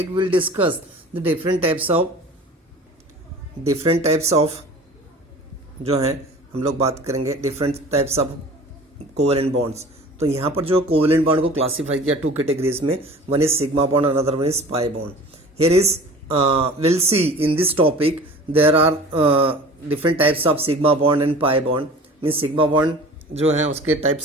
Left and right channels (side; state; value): both; normal; correlation 0.42